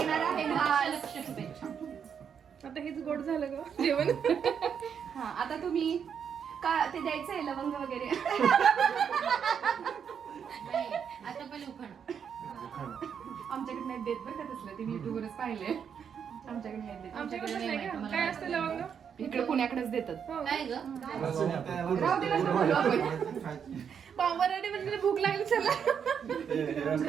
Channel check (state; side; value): quieter; left; 7.5 dB